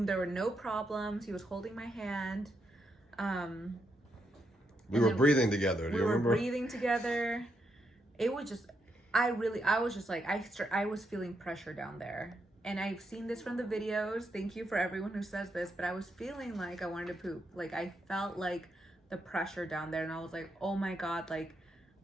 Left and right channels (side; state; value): both; normal; correlation 0.81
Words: there were no problems. He was holding my hand. We were breathing together. Do you remember? We were breathing together. It was just, I was just like, I was feeling pressure down there. And I've seen this from the videos. Thank you for everyone who says this, but I was feeling like I wanted to poop. Like, I felt like the pressure down there, and I was like, oh my God, like,